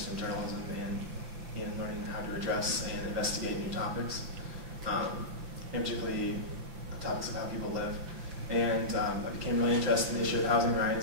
in journalism and in learning how to address and investigate new topics, and particularly topics of how people live. And I became really interested in the issue of housing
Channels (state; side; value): late; left; 6.1 ms